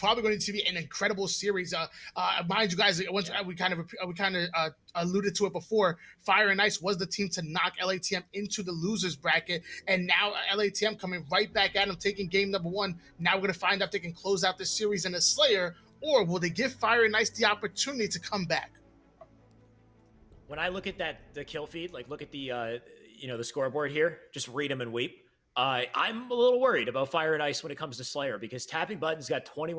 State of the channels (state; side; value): identical; both; correlation 1.00